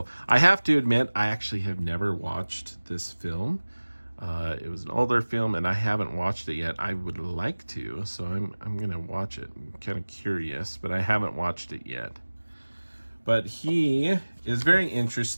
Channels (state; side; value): inverted; both; correlation -1.00